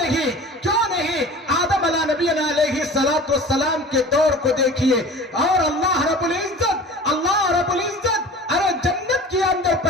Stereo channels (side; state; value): both; normal; correlation 0.40